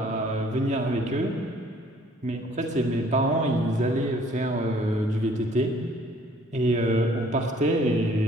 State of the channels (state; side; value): normal; both; correlation 0.58